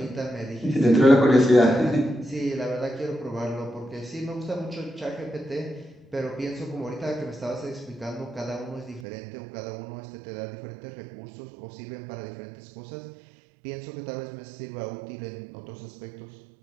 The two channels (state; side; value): drops out; left; at 9.0 s